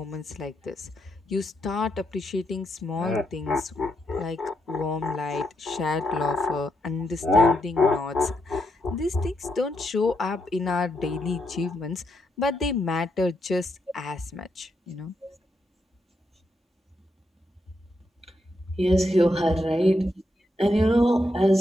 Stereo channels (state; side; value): normal; both; correlation 0.81